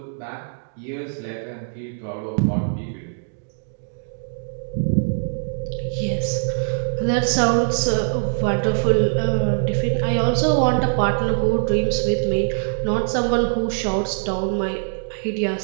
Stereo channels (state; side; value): silent; left; digital silence